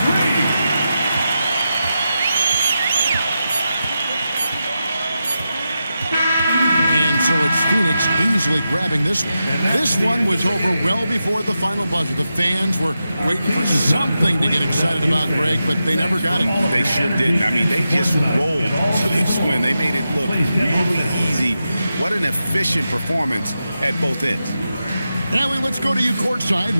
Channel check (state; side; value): inverted; both; correlation -0.89